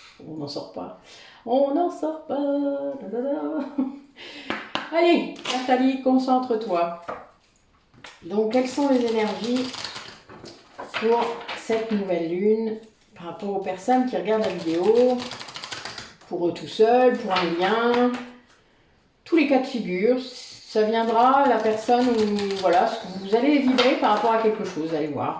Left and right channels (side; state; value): both; identical; correlation 1.00